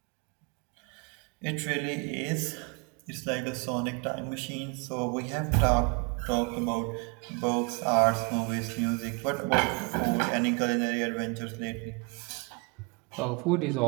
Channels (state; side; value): quieter; left; 31.4 dB